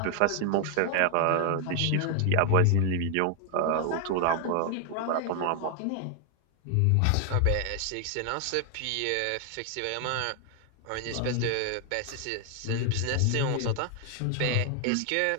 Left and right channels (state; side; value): different; both; correlation 0.00